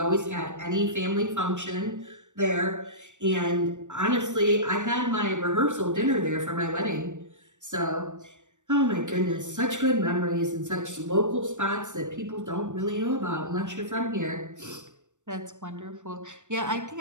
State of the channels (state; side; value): late; left; 0.85 ms